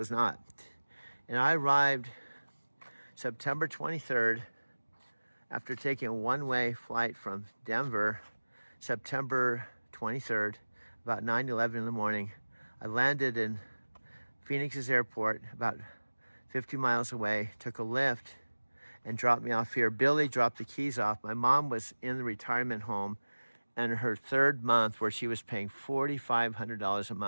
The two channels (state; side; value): inverted; both; correlation -1.00